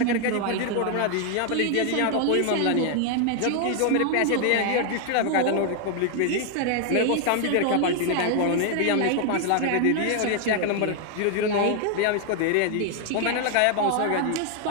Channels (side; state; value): both; different; correlation 0.00